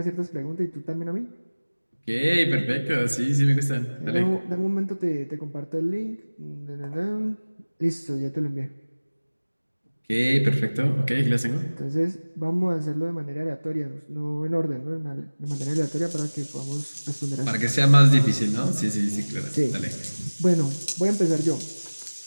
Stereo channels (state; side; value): inverted; both; correlation -1.00